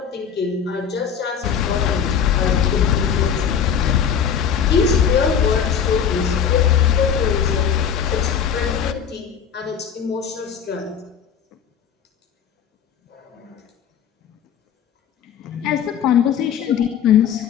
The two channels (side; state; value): right; quieter; 7.8 dB